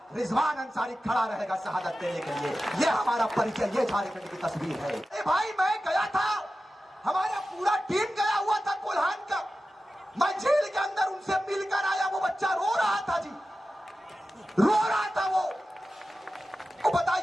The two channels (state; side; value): normal; both; correlation 0.94